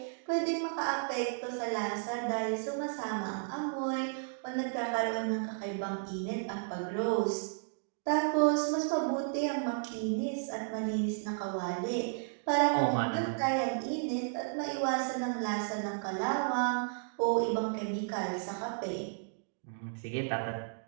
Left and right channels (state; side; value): silent; left; digital silence